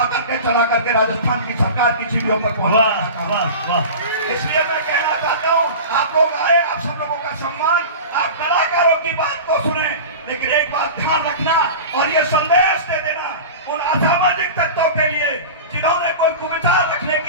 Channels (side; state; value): both; inverted; correlation -0.32